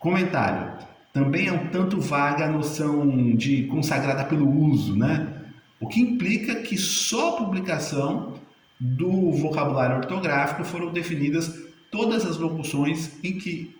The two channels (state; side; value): identical; both; correlation 1.00